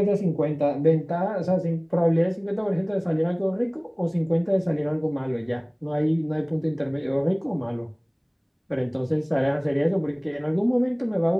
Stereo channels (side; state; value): both; identical; correlation 1.00